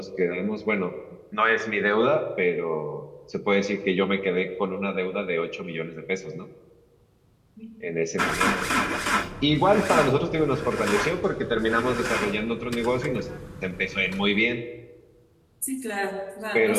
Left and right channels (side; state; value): both; identical; correlation 1.00